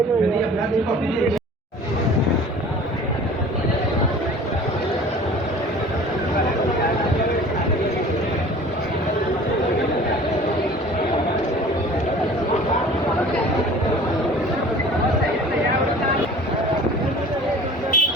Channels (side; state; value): both; normal; correlation 0.45